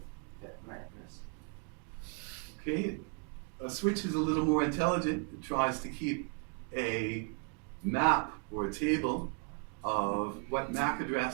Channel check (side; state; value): left; quieter; 35.9 dB